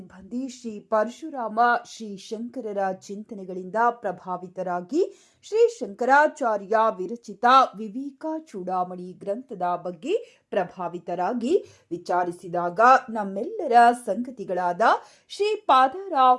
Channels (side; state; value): both; identical; correlation 1.00